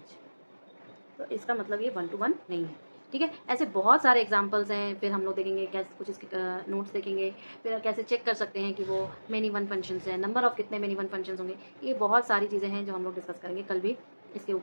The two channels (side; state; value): both; inverted; correlation -1.00